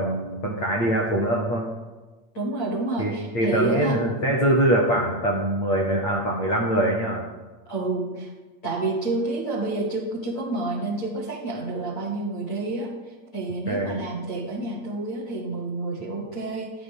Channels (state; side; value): late; right; 8.6 ms